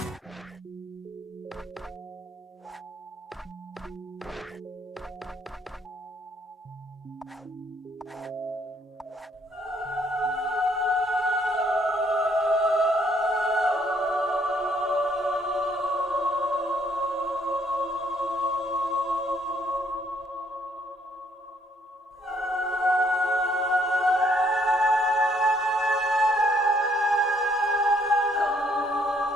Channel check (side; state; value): both; normal; correlation 0.67